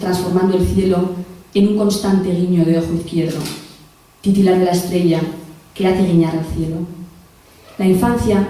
transformando el cielo en un constante guiño de ojo izquierdo. Titilar de la estrella que hace guiñar al cielo. La infancia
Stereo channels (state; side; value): identical; both; correlation 1.00